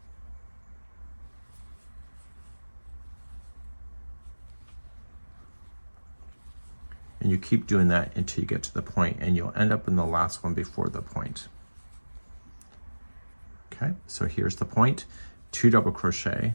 And you keep doing that until you get to the point, and you'll end up in the last one before the point. Okay, so here's the point, 2 double crochet,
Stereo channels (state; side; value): inverted; both; correlation -1.00